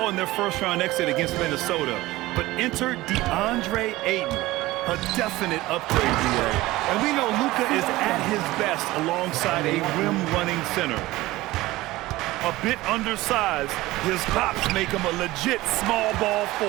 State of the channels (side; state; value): left; quieter; 18.4 dB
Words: in their first-round exit against Minnesota. But enter DeAndre Ayton, a definite upgrade, DA. And we know Luka is at his best alongside a rim-running center. A bit undersized, his hops make him a legit small ball